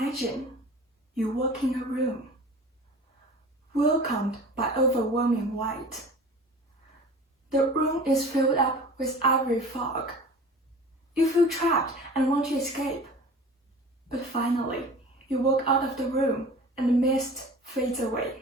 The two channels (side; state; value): both; normal; correlation 0.41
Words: you walk in a room, welcomed by overwhelming light. The room is filled up with ivory fog. You feel trapped and want to escape. But finally, you walk out of the room and the mist fades